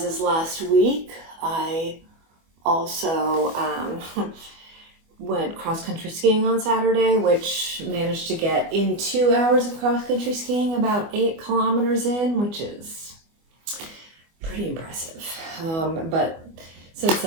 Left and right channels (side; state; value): left; late; 24 ms